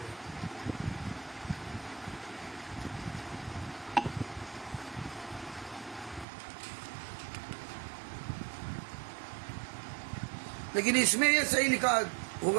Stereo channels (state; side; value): drops out; left; at 6.2 s